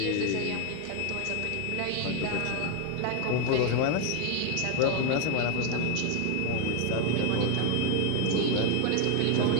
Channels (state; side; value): different; both; correlation 0.01